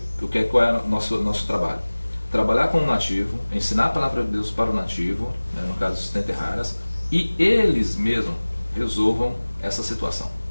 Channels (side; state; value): both; inverted; correlation -1.00